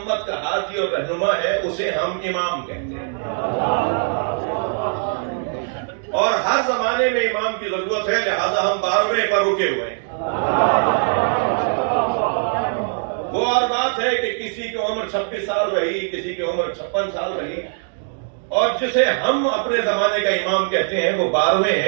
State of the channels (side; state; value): left; silent; digital silence